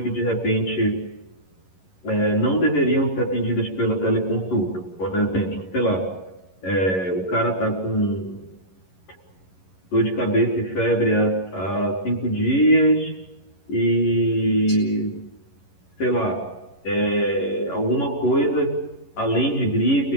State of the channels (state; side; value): late; right; 11 ms